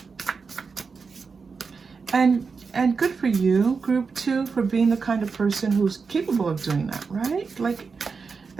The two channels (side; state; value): left; quieter; 5.0 dB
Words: And And good for you, group 2, for being the kind of person who's capable of doing that, right? Like,